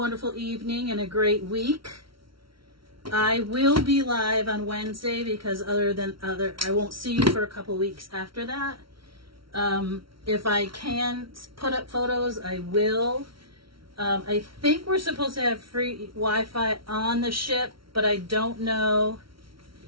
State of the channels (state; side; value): late; left; 0.74 ms